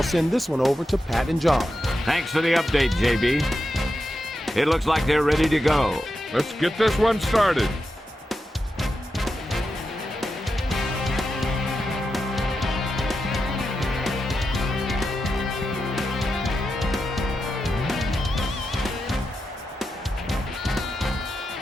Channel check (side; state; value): both; normal; correlation 0.88